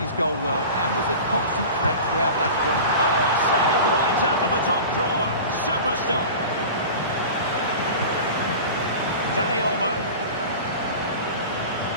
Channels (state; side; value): inverted; both; correlation -0.35